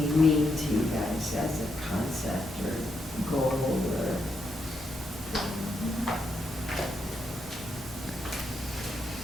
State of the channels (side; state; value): both; normal; correlation 0.81